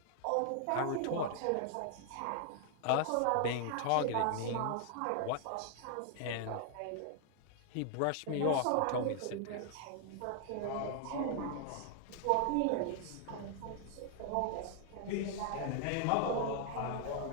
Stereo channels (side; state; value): both; different; correlation 0.00